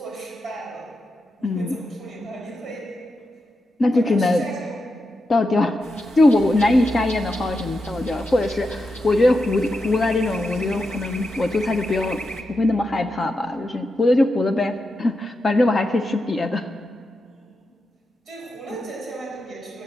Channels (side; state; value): both; normal; correlation 0.87